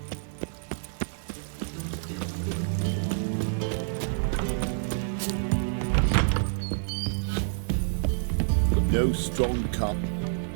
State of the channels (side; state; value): left; silent; digital silence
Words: No strong cup.